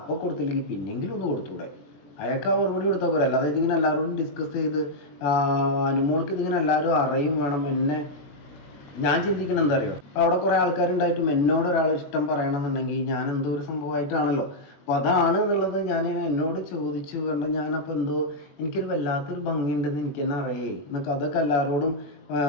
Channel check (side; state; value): right; late; 21 ms